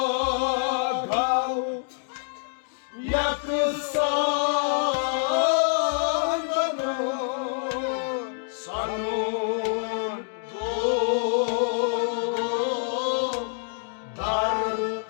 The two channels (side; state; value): right; silent; digital silence